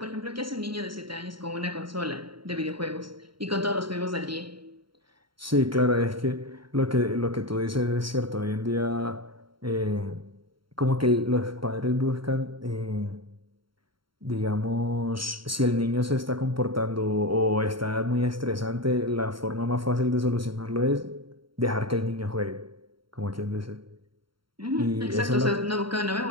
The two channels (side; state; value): left; late; 0.73 ms